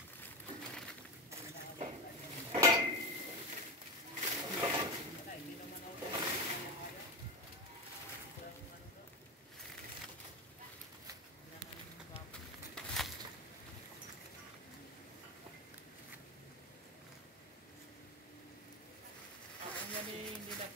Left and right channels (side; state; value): both; normal; correlation 0.19